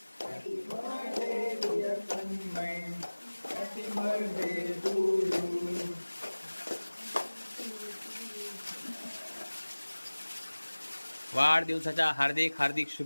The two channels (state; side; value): inverted; both; correlation -1.00